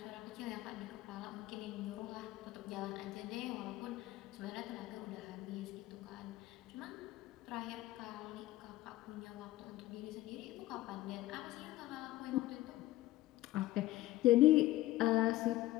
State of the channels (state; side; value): quieter; right; 16.4 dB